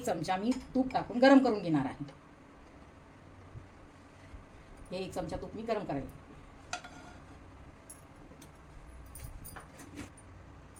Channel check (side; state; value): both; identical; correlation 1.00